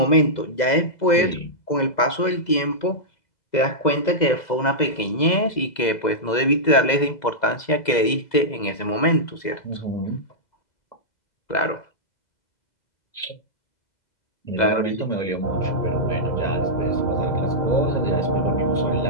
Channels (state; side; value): late; right; 2.0 ms